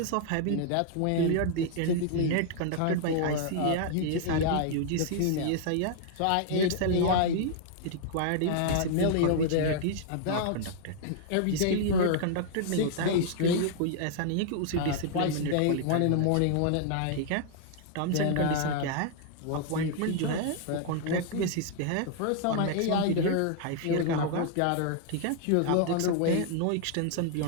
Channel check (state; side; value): different; both; correlation -0.01